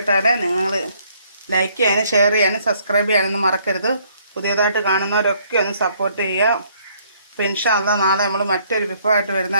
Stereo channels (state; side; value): inverted; both; correlation -0.65